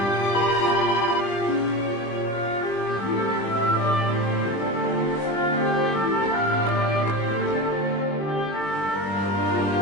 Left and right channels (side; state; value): right; late; 20 ms